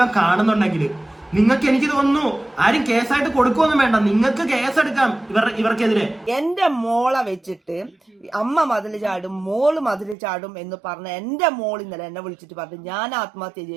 കാണുന്നുണ്ടെങ്കിൽ നിങ്ങൾക്ക്, എനിക്ക് തോന്നുന്നു, ആരും കേസായിട്ട് കൊടുക്കുമൊന്നും വേണ്ട, നിങ്ങൾക്ക് കേസെടുക്കാം ഇവർക്കെതിരെ. എന്റെ മോളെ വെച്ചിട്ട് അമ്മ മതിൽ ചാടും, മോള് മതിൽ ചാടും എന്ന് പറഞ്ഞ എന്റെ മോൾ ഇന്നലെ എന്നെ വിളിച്ചിട്ട് പറഞ്ഞു ഞാൻ ആത്മഹത്യ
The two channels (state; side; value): drops out; left; at 10.2 s